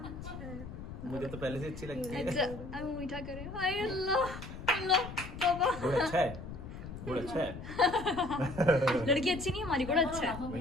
मुझे तो पहले से अच्छी लगती है। अच्छा अब मीठा करे। हाय अल्लाह अल्लाह बाबा। गुड़ अच्छा है, गुड़ अच्छा है। लड़की अच्छी नहीं हमारी, बड़ा अच्छा है। भाई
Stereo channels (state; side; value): noise; left; rumble, 11 dB below the sound